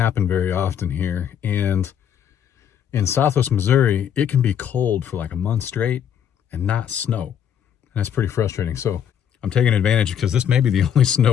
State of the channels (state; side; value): quieter; right; 8.9 dB